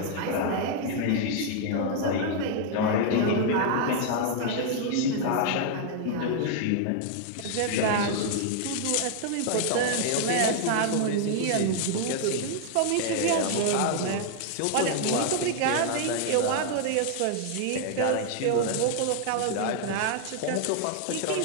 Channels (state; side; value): different; both; correlation 0.00